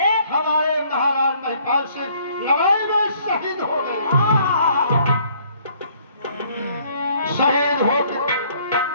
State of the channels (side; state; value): both; inverted; correlation -0.62